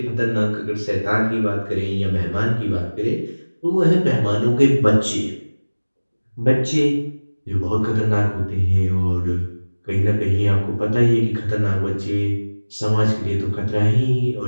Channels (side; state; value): both; inverted; correlation -1.00